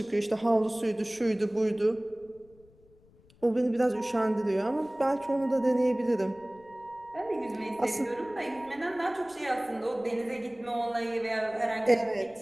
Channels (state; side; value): noise; left; rumble, 29 dB below the sound